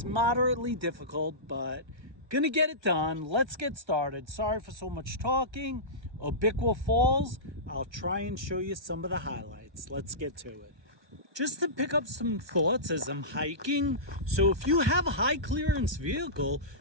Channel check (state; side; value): late; left; 1.2 ms